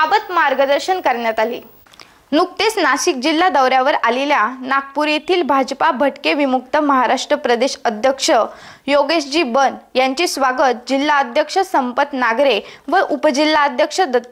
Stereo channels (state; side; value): identical; both; correlation 1.00